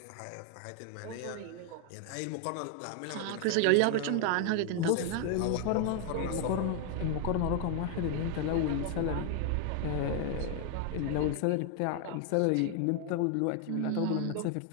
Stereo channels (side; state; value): both; different; correlation 0.00